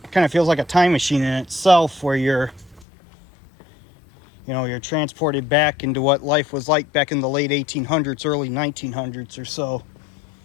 kind of feels like a time machine in itself, where you're transported back into what life was like back in the late 1800s, early 1900s or so.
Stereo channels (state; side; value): drops out; right; at 2.9 s